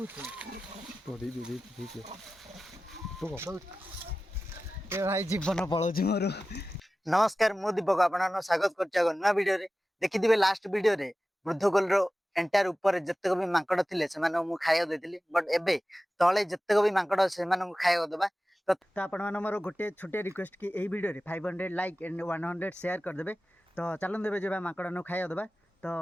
जीवन पलाऊँ मोर नमस्कार मु दीपक आप स्वागत कर नुआ वीडियो देखिए लास्ट वीडियो रे वृद्धकोल एंटायर ऊपर जितक भी मांकड़ थे से खाया देती बट एबे तले जितक भी मांकड़ से खाया देवा तो आपण मोर गोटे छोटे रिक्वेस्ट कि यही वीडियो रे 500 लाइक एंड 100 शेयर करदे। तो चलन देवे जो मांकड़ खाया देवा।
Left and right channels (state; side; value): normal; both; correlation 0.95